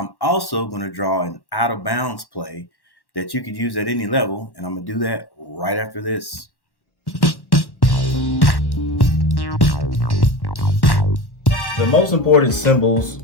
also going to draw an out of bounds play that you could use at any level, and I'm going to do that right after this. The most important symbols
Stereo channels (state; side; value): late; right; 1.1 ms